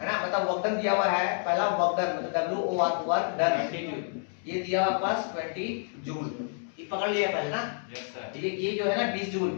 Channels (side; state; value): right; silent; 59 dB below the other